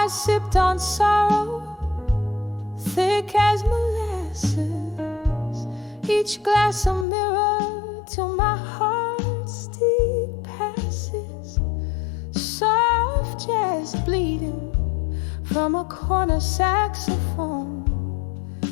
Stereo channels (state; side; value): drops out; right; at 7.1 s